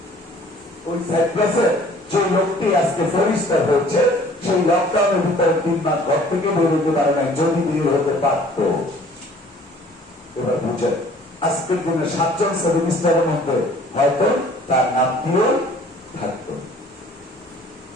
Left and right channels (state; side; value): normal; both; correlation 0.53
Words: ওই সাইপ্রাসে যে লোকটি আজকে ফরিস্টার হচ্ছে, সেই লকডাউনের ভিতরে 3 মাস ঘর থেকে বেরোতে পারে নাই, যদি বের হতে পারত। এবার বুঝেন, আজকের দিনে 7 জন সেমিস্টারের মধ্যে হয়তো তার নামটিও থাকতো।